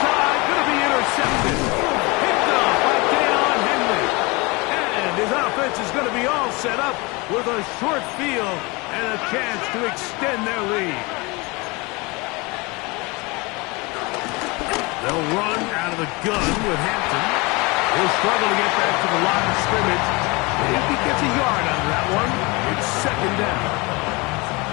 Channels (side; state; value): right; quieter; 26.2 dB